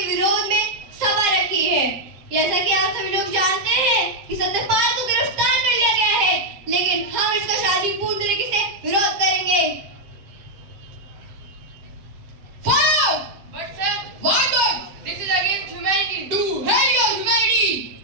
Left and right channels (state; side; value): late; left; 7.4 ms